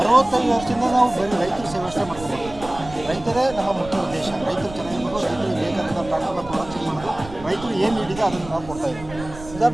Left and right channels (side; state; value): right; noise; rumble, 14 dB below the sound